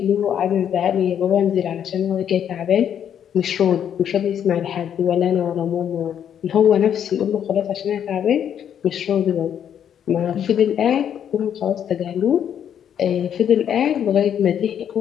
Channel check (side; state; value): right; quieter; 9.1 dB